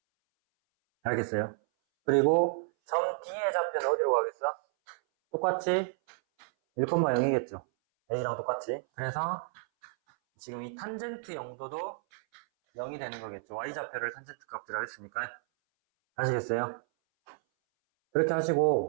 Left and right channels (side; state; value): left; silent; 57 dB below the other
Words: 알겠어요? 그리고 점 D의 좌표는 어디로 가겠어? 똑같이 1,0이겠죠. A랑 똑같이. 그래서 지금 이 탄젠트 0도도 0이 되는 거겠죠. y좌표를 탄젠트 값이라고 했으니까. 아시겠어요? 그렇게